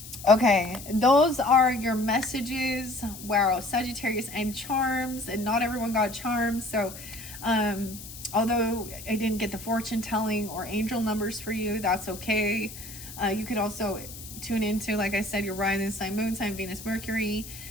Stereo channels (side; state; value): left; noise; hiss, 13 dB below the sound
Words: Okay, those are your messages. Wow, Sagittarius and charms, and not everyone got charms. So, although I didn't get the fortune telling or angel numbers for you, that's okay. You could also tune into, like I said, your rising sign, moon sign, Venus, Mercury,